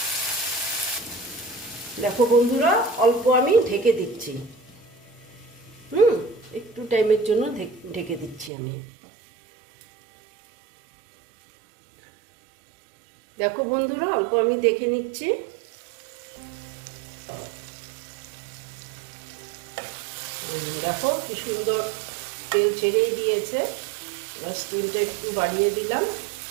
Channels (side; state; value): left; drops out; at 8.5 s